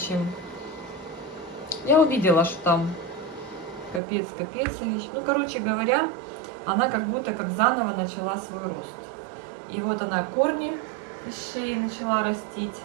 Я увидела, что там капец вещь. Ну, короче говоря, она как будто как заново начала свой рост. И вот она корни из шеи начала растить.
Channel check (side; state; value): left; drops out; at 4.0 s